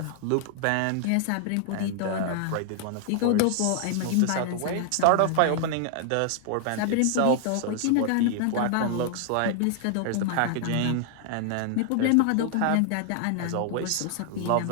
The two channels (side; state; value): both; different; correlation 0.00